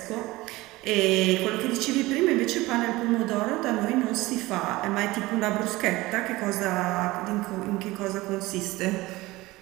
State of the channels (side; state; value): left; quieter; 19.7 dB